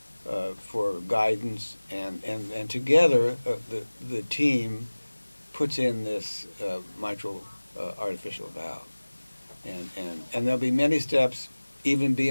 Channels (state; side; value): inverted; both; correlation -1.00